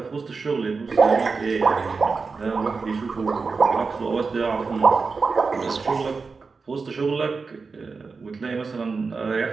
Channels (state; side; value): quieter; left; 4.6 dB